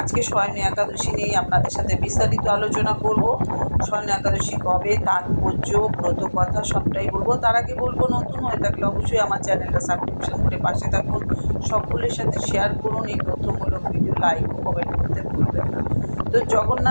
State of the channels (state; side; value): inverted; both; correlation -1.00